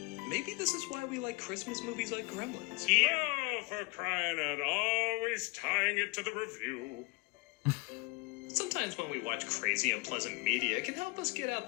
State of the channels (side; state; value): right; quieter; 26.6 dB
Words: maybe this is why we like Christmas movies like Gremlins. Yeah, for crying out, always tying it to the review. Sometimes when we watch crazy, unpleasant media, it can help us get